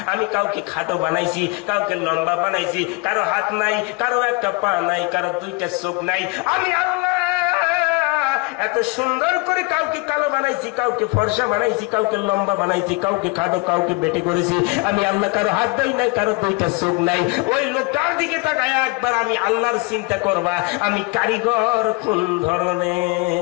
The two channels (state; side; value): quieter; right; 26.8 dB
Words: আমি কাউকে খাটো বানাইছি, কাউকে লম্বা বানাইছি, কারো হাত নাই, কারো একটা পা নাই, কারো দুইটা চোখ নাই। আমি আল্লাহ এত সুন্দর করে কাউকে কালো বানাইছি, কাউকে ফর্সা বানাইছি, কাউকে লম্বা বানাইছি, কাউকে খাটো, কাউকে বেটে করেছি। আমি আল্লাহ কারো হাত দেই নাই, কারো দুইটা চোখ নাই। ওই লোকটার দিকে তাকায় একবার আমি আল্লাহর চিন্তা করবা আমি কারিগর কোন